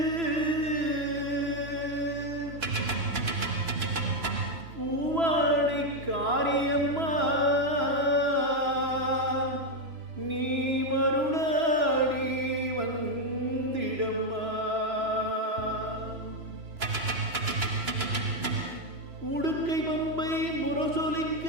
பூவாடை காரியம்மா நீ மருளாடி வந்திடம்மா. உடுக்கை பம்பை முரசொலிக்க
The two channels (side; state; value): left; late; 3.0 ms